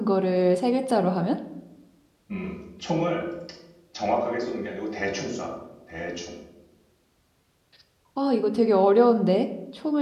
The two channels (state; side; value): identical; both; correlation 1.00